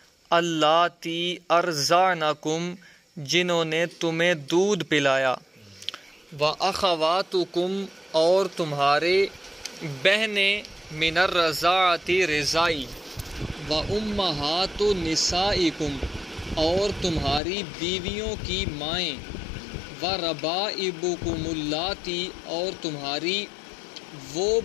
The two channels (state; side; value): drops out; right; at 17.4 s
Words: اللاتی ارضعنکم جنہوں نے تمہیں دودھ پلایا، و اخواتکم اور تمہارے بہنیں، من الرضاعۃ رضائی، و امہات نسائکم اور تمہاری بیویوں کی مائیں، و ربائبکم اللاتی اور تمہاری وہ